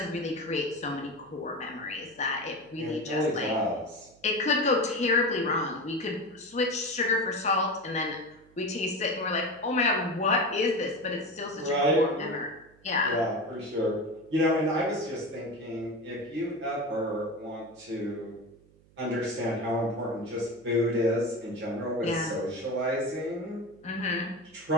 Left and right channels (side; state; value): right; noise; hum, 28 dB below the sound